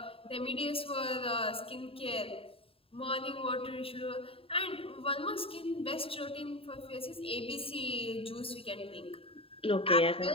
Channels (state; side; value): late; right; 0.27 ms